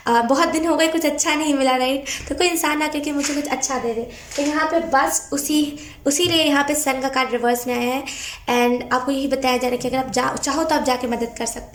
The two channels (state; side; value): identical; both; correlation 1.00